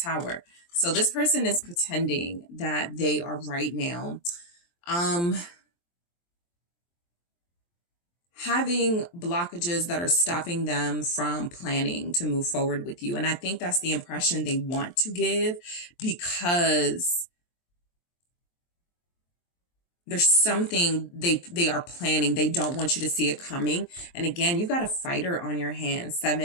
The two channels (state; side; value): late; right; 23 ms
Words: So this person is pretending that they are right now, having blockages that are stopping them from planning to move forward with you. And I think that's the impression they want to give, because There's something they are planning. They don't want you to see it coming. And again, you've got a fighter on your hands.